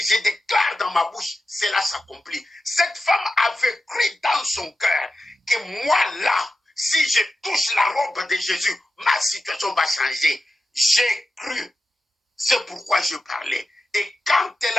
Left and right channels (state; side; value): normal; both; correlation 0.91